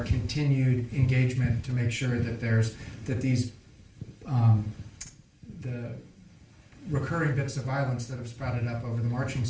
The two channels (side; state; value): both; identical; correlation 1.00